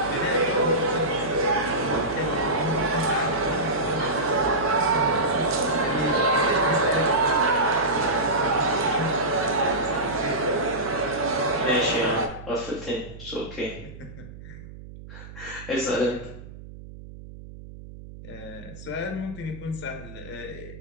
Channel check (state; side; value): noise; right; hum, 15 dB below the sound